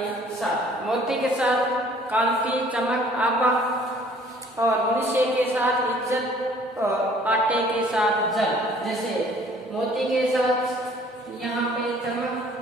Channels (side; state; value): both; normal; correlation 0.56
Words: साथ, मोती के साथ कांति चमक आभा, और मनुष्य के साथ इज्जत और आटे के साथ जल। जैसे मोती के साथ यहाँ पे चमक